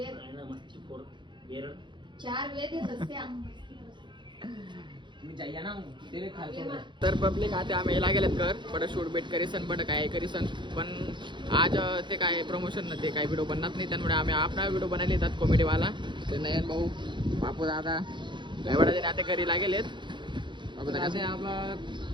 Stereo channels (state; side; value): late; left; 0.23 ms